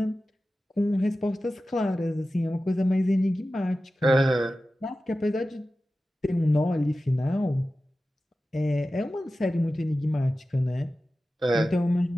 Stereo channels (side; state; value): both; normal; correlation 0.94